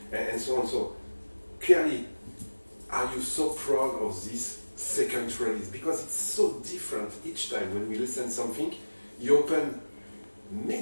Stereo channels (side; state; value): both; inverted; correlation -1.00